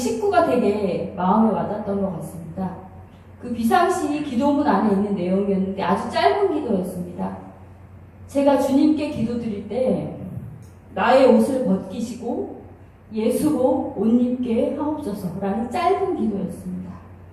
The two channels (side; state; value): both; identical; correlation 1.00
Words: 되게 마음에 와닿았던 것 같습니다. 그 비상시 기도문 안에 있는 내용이었는데 아주 짧은 기도였습니다. 제가 주님께 기도드릴 때 나의 옷을 벗기시고 예수로 옷 입게 하옵소서라는 짧은 기도였습니다.